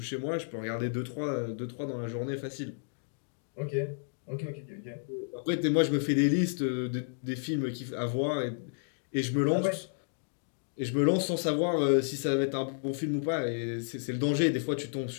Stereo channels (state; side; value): silent; right; digital silence